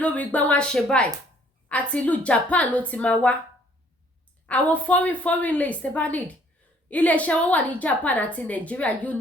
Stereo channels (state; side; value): normal; both; correlation 0.61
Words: lórí gbá wọn ṣe báyìí àti ìlú Japan ló ti máa wá àwọn foreign lace tẹ́ bá need iléeṣẹ́ wọn wà ní Japan àti Nigeria